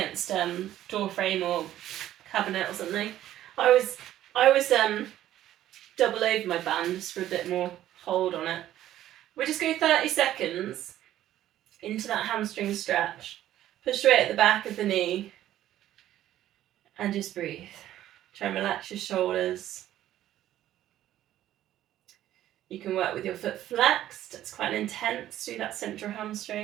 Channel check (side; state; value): left; quieter; 12.9 dB